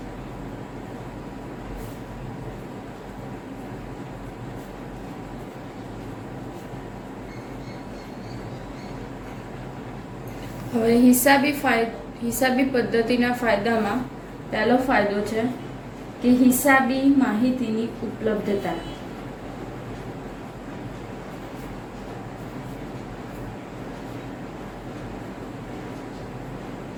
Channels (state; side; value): identical; both; correlation 1.00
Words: હવે હિસાબી પદ્ધતિના ફાયદામાં પહેલો ફાયદો છે કે હિસાબી માહિતીની ઉપલબ્ધતા.